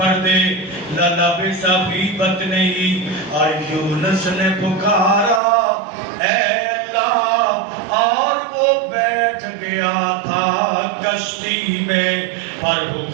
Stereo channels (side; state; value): left; drops out; at 5.4 s